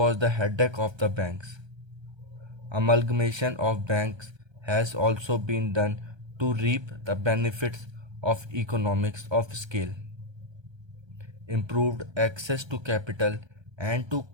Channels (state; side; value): late; left; 1.3 ms